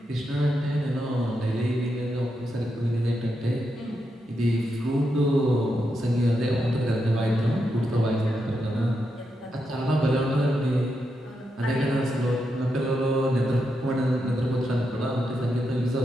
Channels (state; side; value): normal; both; correlation 0.84